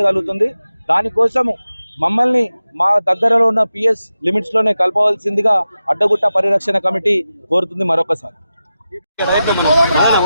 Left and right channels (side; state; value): both; inverted; correlation -0.92